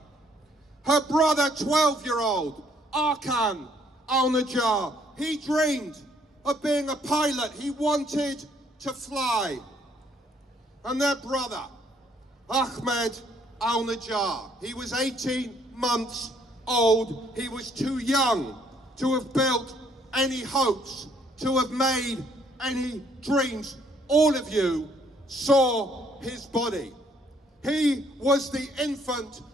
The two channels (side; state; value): both; normal; correlation 0.66